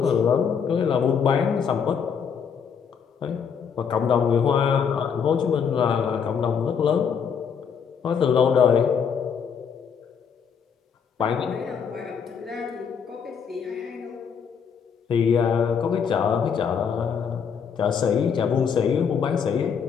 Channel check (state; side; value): quieter; right; 6.9 dB